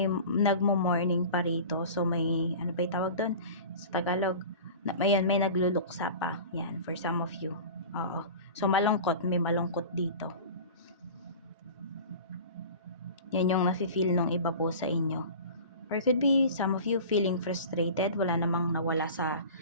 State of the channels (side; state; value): both; inverted; correlation -0.37